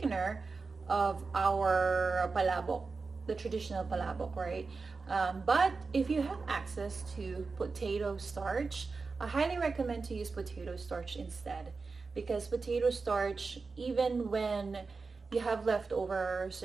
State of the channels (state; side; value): quieter; left; 4.3 dB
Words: of our palabok, the traditional palabok, right? But if you have access to potato starch, I highly recommend to use potato starch instead, because potato starch, even when you have leftovers,